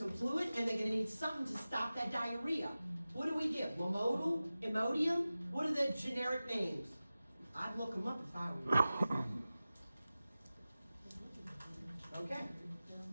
fluid, and they're gonna need something to stop that diarrhea. What do we give? Lamodal? Imodium? What are the generic names? I'd look them up if I were you. Okay.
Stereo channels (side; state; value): both; inverted; correlation -0.96